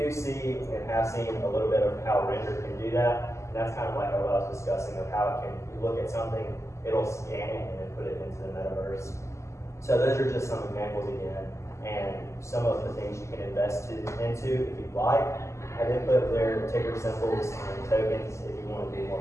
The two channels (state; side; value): late; right; 0.14 ms